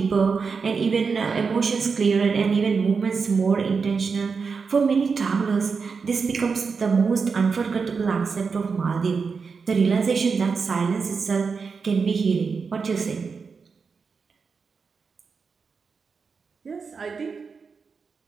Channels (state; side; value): quieter; left; 5.2 dB